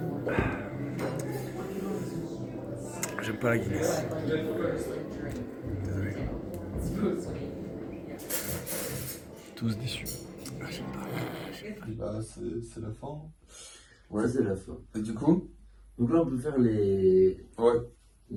J'aime pas la Guinness. Désolé. Tous déçus. Bah, c'est la fin. Ouais, c'est la fin. Et du coup? Donc là, on peut faire les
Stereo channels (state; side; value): identical; both; correlation 1.00